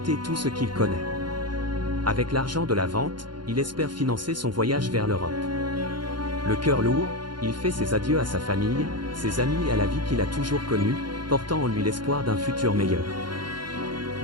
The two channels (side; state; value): left; late; 0.71 ms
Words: tout ce qu'il connaît. Avec l'argent de la vente, il espère financer son voyage vers l'Europe. Le cœur lourd, il fait ses adieux à sa famille, ses amis et à la vie qu'il a toujours connue, portant en lui l'espoir d'un futur meilleur.